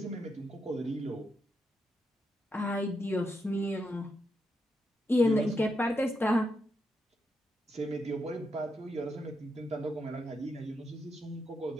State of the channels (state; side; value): normal; both; correlation 0.83